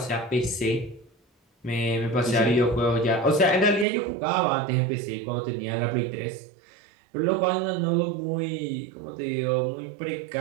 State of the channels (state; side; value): drops out; left; at 3.9 s